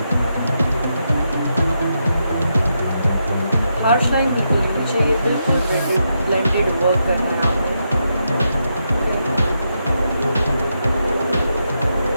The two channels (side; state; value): both; inverted; correlation -0.83